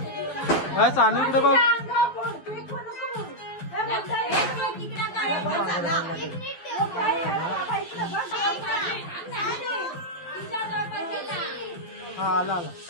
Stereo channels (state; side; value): late; right; 12 ms